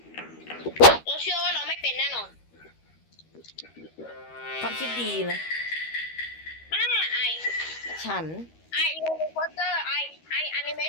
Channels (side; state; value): right; late; 13 ms